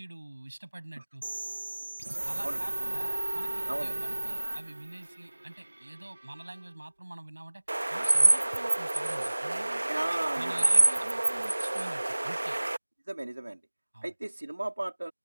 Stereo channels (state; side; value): inverted; both; correlation -1.00